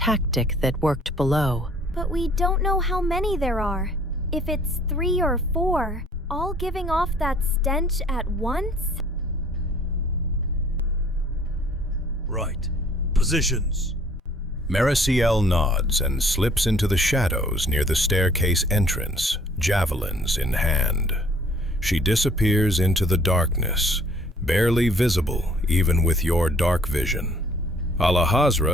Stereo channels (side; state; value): both; normal; correlation 0.56